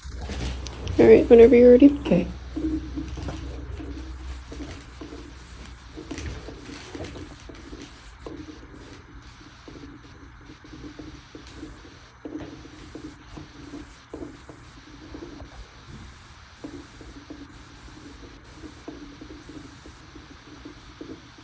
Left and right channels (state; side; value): identical; both; correlation 1.00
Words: All right, whenever you're ready. Okay.